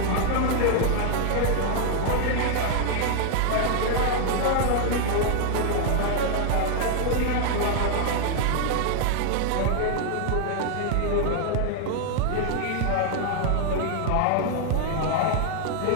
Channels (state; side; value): different; both; correlation 0.00